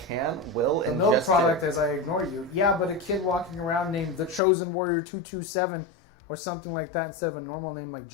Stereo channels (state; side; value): drops out; right; at 4.4 s